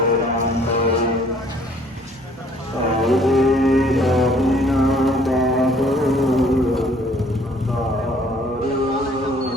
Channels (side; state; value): both; normal; correlation 0.58